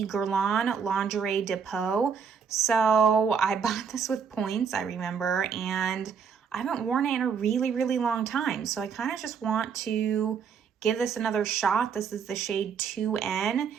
Guerlain Lingerie de Peau. So I bought this with points, I remember, and I haven't worn it in a really, really long time. So I kind of just want to give this another shot. This is the shade 2N,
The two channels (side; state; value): left; quieter; 6.5 dB